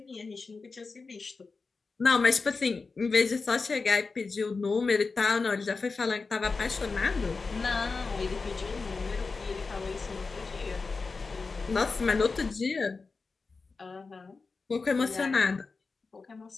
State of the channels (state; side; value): quieter; right; 4.3 dB